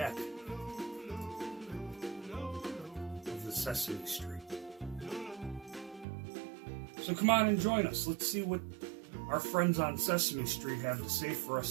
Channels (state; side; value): drops out; left; at 6.1 s